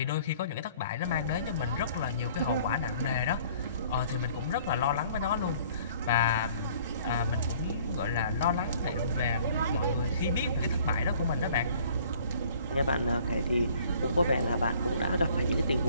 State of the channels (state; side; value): inverted; both; correlation -0.55